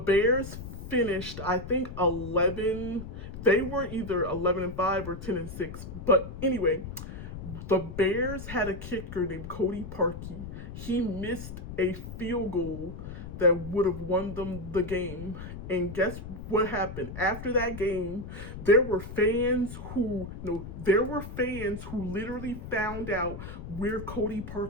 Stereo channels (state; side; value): noise; left; rumble, 10 dB below the sound